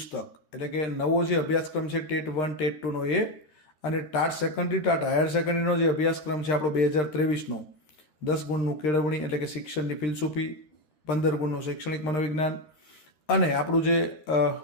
એટલે કે નવો જે અભ્યાસક્રમ છે ટેટ 1 ટેટ 2નો એ, અને ટાટ સેકન્ડરી ટાટ હાયર સેકન્ડરીનો જે અભ્યાસક્રમ છે આપણો 2023નો 10 ગુણનું કેળવણી એટલે કે શિક્ષણની ફિલસૂફી, 15 ગુણનું શૈક્ષણિક મનોવિજ્ઞાન, અને આપણું જે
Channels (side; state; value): right; late; 13 ms